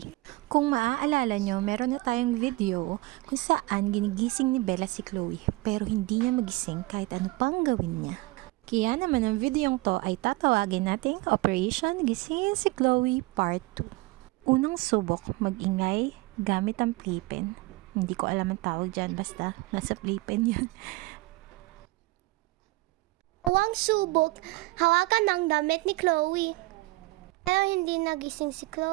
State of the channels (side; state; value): left; quieter; 22.1 dB